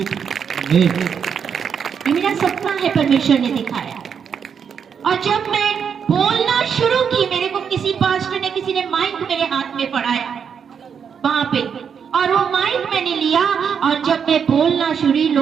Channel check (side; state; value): left; quieter; 7.1 dB